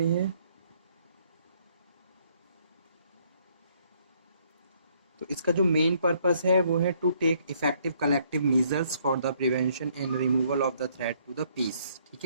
है। तो इसका जो मेन पर्पस है वो है to take effective collective measures for the prevention and removal of the threat to the peace, ठीक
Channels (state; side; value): inverted; both; correlation -0.66